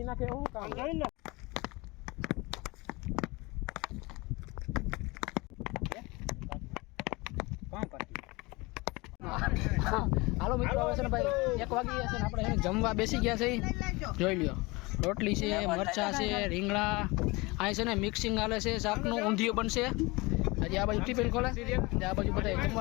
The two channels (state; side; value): quieter; right; 24.2 dB